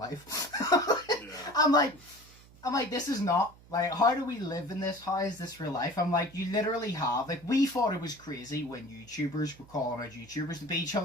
I'm like, this is not, like, how do we live in this? How is this real life? I'm like, you literally have, like, we thought it was crazy when YouTubers were calling out YouTubers to beat each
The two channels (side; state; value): right; noise; hum, 23 dB below the sound